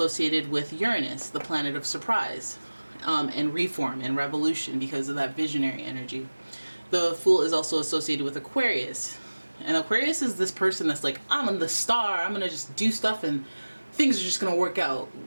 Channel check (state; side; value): inverted; both; correlation -1.00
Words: with Uranus, the planet of surprise, and reform and revolution because of that visionary energy. The Fool is also associated with Aquarius. And Aquarius is this person that's like, I'm the star, I'm gonna just do stuff and things are just gonna work out.